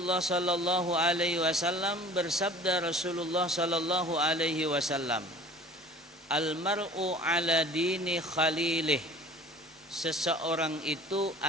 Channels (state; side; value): normal; both; correlation 0.45